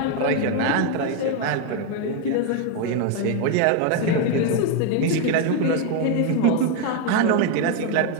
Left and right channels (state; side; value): different; both; correlation 0.01